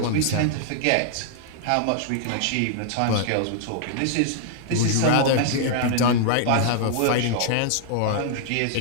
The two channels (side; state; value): both; different; correlation -0.01